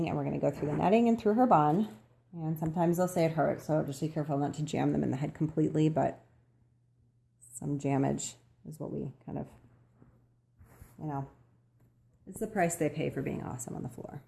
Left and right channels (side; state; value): both; identical; correlation 1.00